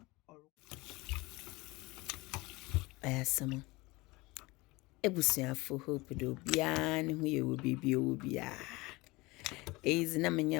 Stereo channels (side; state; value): right; quieter; 22.6 dB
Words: Ayasama. Ebusiafo hope do bia ne ho ye wo bibia wo bia. Is na